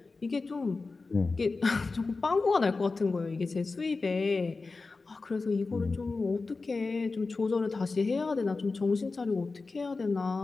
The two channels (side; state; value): right; quieter; 3.9 dB